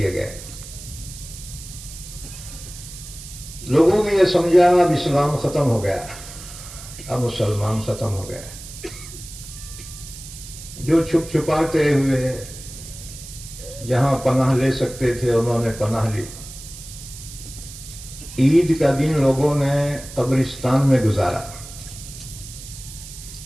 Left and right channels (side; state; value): right; noise; hiss, 14 dB below the sound